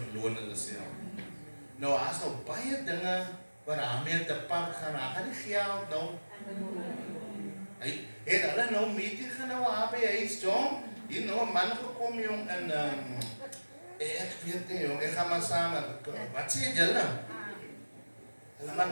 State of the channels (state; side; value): inverted; both; correlation -1.00